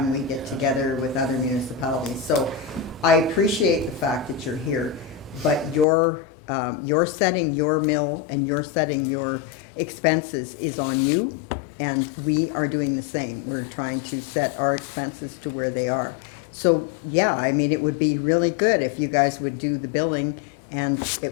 we get together with other municipalities. So I appreciate the fact that you're here, but you're setting your mill and you're setting your expenses is on you, and we are doing the same. We're trying to set our expenses to where they are. So, yeah, I mean, it would be really good if you guys would do the billing and it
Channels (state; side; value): drops out; right; at 5.9 s